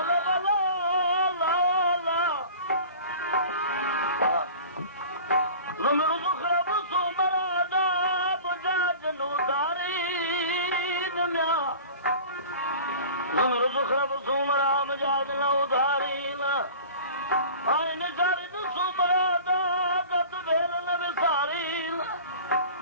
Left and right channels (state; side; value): inverted; both; correlation -0.40